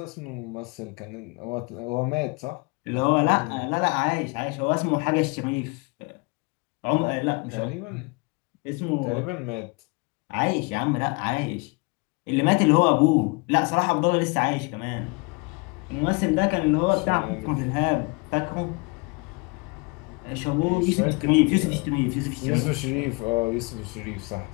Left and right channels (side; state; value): right; quieter; 29.4 dB